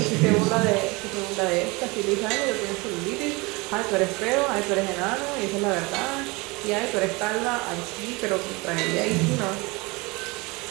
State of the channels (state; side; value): quieter; left; 25.4 dB